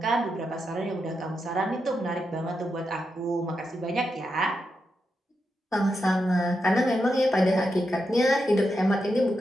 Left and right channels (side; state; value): both; normal; correlation 0.86